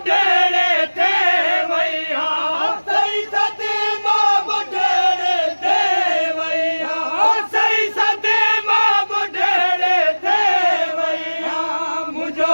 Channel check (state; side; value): inverted; both; correlation -1.00